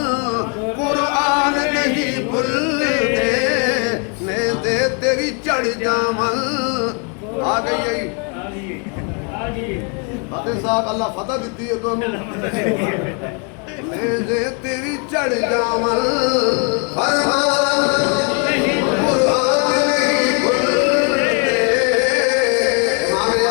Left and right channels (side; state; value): right; quieter; 36.8 dB